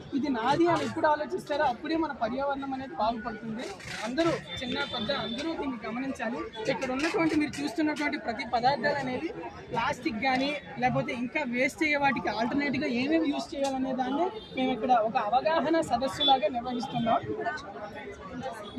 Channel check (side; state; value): both; identical; correlation 1.00